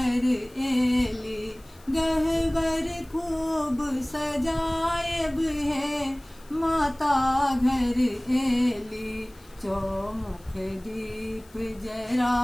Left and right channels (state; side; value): noise; left; hiss, 27 dB below the sound